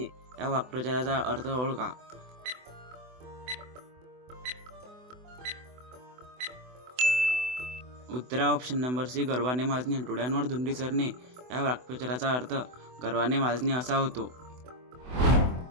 या वाक्प्रचाराचा अर्थ ओळखा। उत्तर आहे ऑप्शन नंबर सी, गर्वाने माजणे। डोळ्यांवर धुंदी चढणे या वाक्प्रचाराचा अर्थ गर्वाने माजणे असा होतो।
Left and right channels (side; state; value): left; late; 24 ms